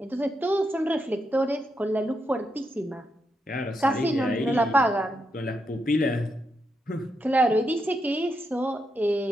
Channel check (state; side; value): normal; both; correlation 0.83